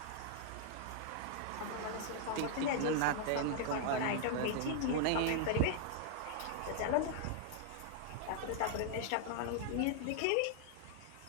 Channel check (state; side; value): different; both; correlation -0.01